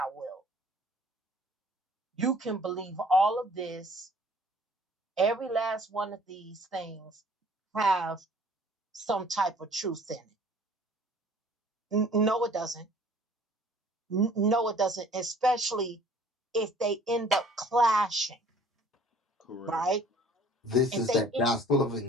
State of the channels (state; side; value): normal; both; correlation 0.53